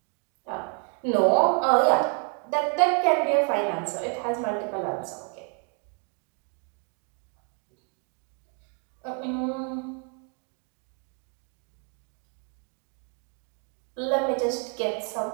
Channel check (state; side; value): quieter; left; 37.7 dB